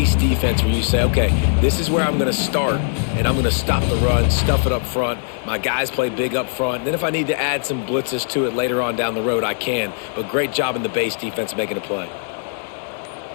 defense where you say, okay, this is where I'm going to start, and I'm going to stop the run, stuff it up front. My guys play big up front. And then if I need to add some blitzes to it later on down the road, I can. But great job in the base defense making a play.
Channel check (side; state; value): right; silent; 66 dB below the other